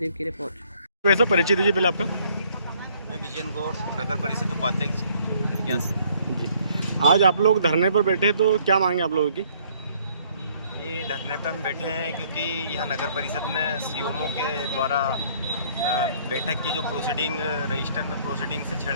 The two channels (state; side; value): inverted; both; correlation -0.62